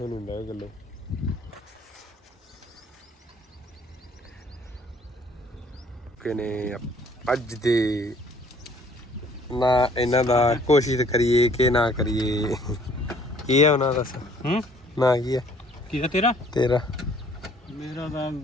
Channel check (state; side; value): normal; both; correlation 0.58